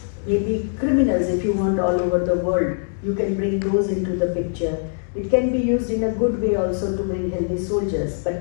maybe criminals if you want all over the world. You can bring those into the picture. It can be used in a good way also to bring healthy soldiers.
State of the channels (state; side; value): silent; right; digital silence